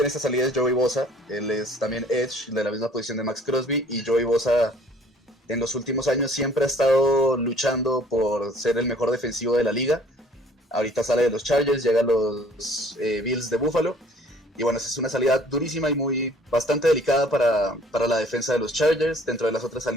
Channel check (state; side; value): normal; both; correlation 0.56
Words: en esta salida es Joey Bosa. Él es también edge de la misma posición de Max Crosby, y Joey Bosa en los últimos años siempre ha estado luchando por ser el mejor defensivo de la liga. Ahorita sale de los Chargers, llega a los Bills de Buffalo. Y bueno, esa es una salida durísima y bastante delicada para la defensa de los Chargers. Dentro de las otras